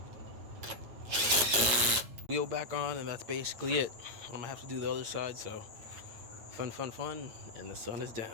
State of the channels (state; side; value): late; left; 8.7 ms